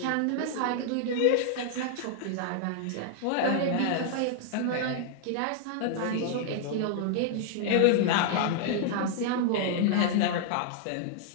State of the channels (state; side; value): different; both; correlation 0.00